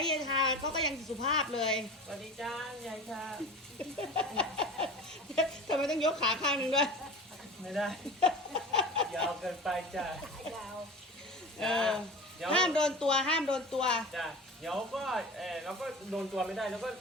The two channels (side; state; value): both; normal; correlation 0.34